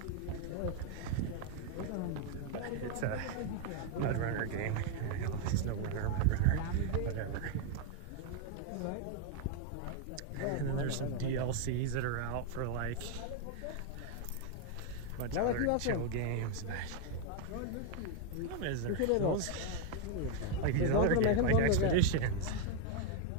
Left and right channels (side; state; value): both; different; correlation 0.01